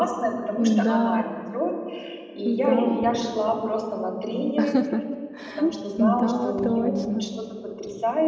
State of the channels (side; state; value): both; identical; correlation 1.00